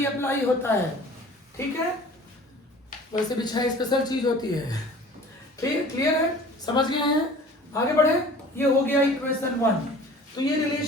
अप्लाई होता है, ठीक है। वैसे भी 6 स्पेशल चीज होती है, क्लियर है, समझ गए हैं, आगे बढ़े। ये हो गया इक्वेशन 1। तो ये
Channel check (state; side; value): normal; both; correlation 0.45